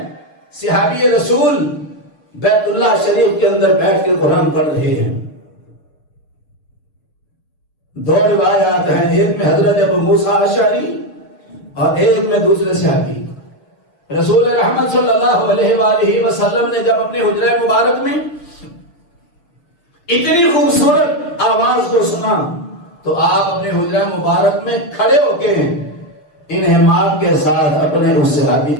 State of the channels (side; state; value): right; late; 6.7 ms